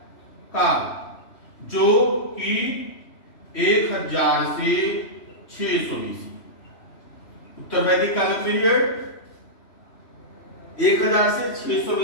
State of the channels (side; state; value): right; late; 3.1 ms